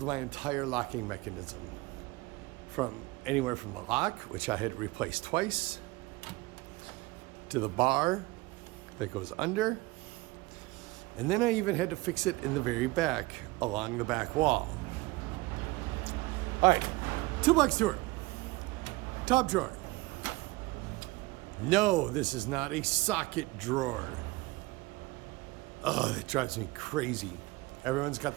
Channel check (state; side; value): quieter; left; 21.2 dB